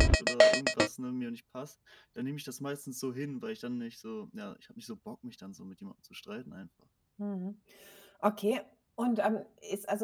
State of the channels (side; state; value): both; identical; correlation 1.00